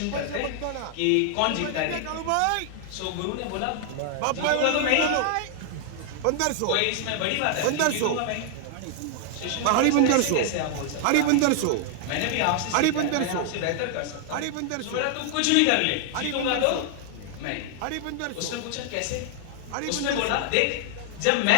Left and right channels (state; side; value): different; both; correlation 0.00